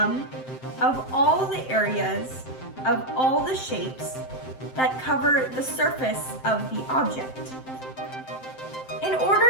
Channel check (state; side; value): late; right; 7.7 ms